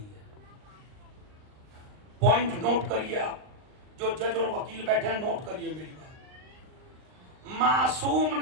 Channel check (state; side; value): late; left; 39 ms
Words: ہے. پوائنٹ نوٹ کریے, آپ جو جج اور وکیل بیٹھے ہیں نوٹ کریے میری بات. معصوم